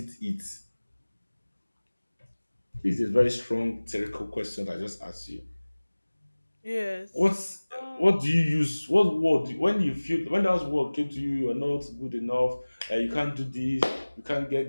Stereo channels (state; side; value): inverted; both; correlation -1.00